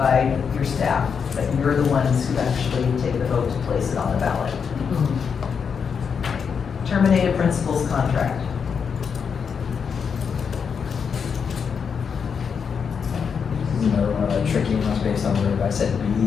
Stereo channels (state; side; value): quieter; right; 6.4 dB